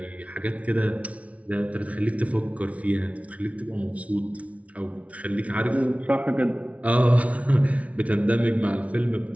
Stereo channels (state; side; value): late; left; 0.066 ms